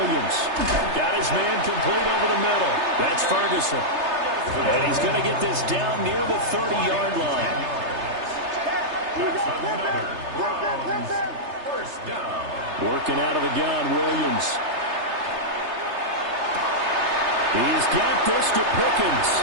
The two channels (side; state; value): left; late; 3.3 ms